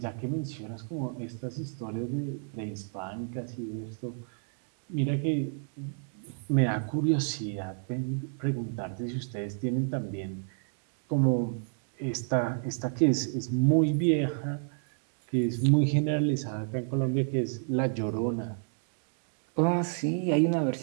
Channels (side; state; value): left; silent; digital silence